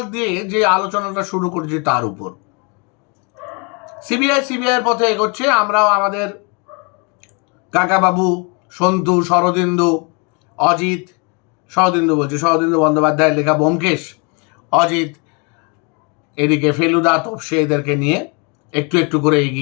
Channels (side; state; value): right; quieter; 33.1 dB